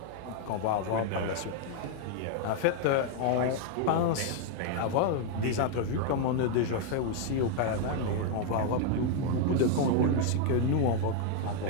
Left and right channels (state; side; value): different; both; correlation 0.00